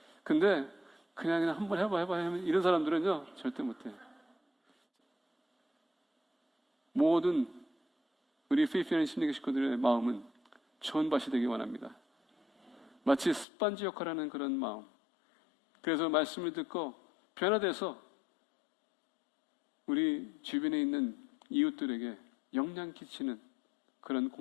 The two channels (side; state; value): right; drops out; at 13.5 s